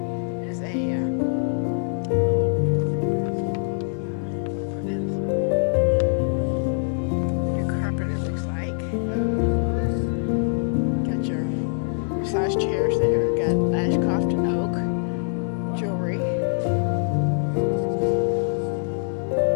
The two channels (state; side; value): silent; right; 63 dB below the other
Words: is a new carpet, it looks like. Got your massage chairs there. Got Ashcroft and Oak jewelry.